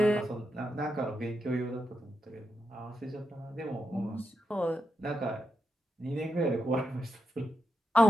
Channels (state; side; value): normal; both; correlation 0.86